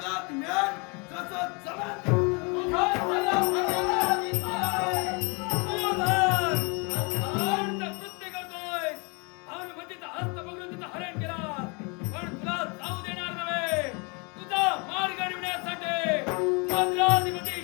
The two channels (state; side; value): quieter; right; 31.8 dB